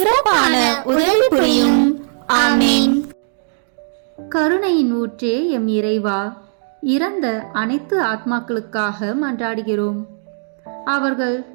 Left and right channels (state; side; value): silent; left; digital silence